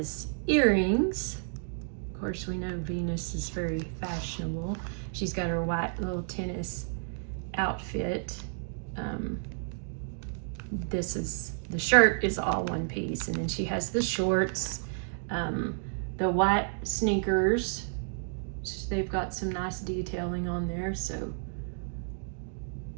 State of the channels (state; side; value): silent; left; digital silence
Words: earrings. Of course, we know Venus is very fashionable. She's got her white little tennis outfit. The shirt is all one piece, and then she has the shorts, the white sneakers. They've got some nice detailing on there, so